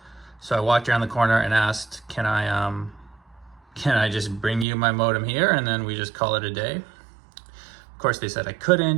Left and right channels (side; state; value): left; drops out; at 4.7 s